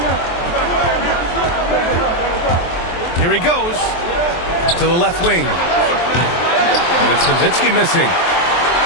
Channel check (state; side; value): late; right; 23 ms